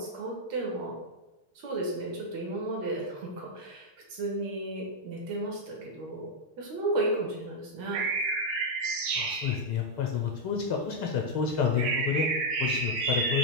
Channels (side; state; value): left; late; 6.5 ms